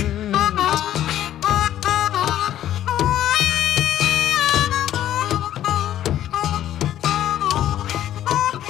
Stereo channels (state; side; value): quieter; right; 12.0 dB